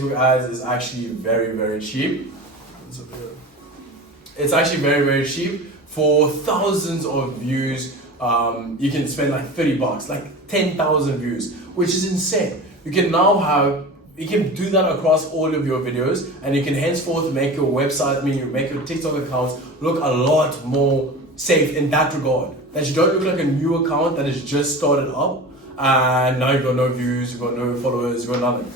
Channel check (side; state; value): both; normal; correlation 0.33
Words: ads is actually very, very cheap. It's actually very, very cheap. For thousands of views, you can spend like $30, like 10,000 views, which is insane. You can do that across all of your videos, and you can henceforth make your website, make your TikTok accounts look a lot more safe in that regard. That you don't look like a new account that has just started up and now you've got no views, you've got no followers, you've got nothing.